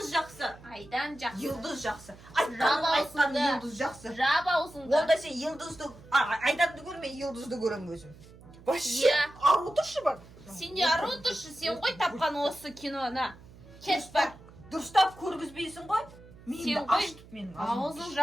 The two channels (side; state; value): right; noise; hum, 21 dB below the sound